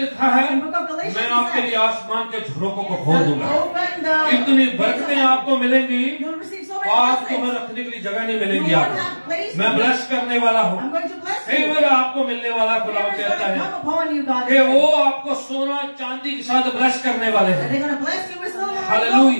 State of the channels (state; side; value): inverted; both; correlation -1.00